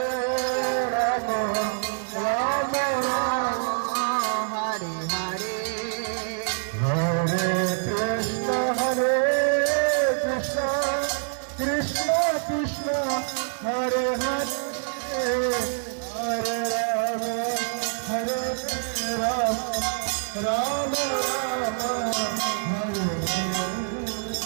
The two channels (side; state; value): left; silent; 61 dB below the other